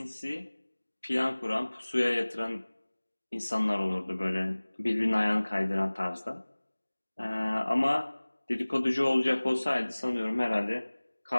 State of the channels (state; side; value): inverted; both; correlation -1.00